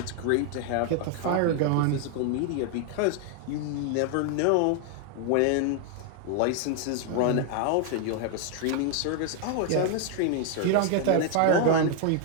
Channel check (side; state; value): both; different; correlation 0.00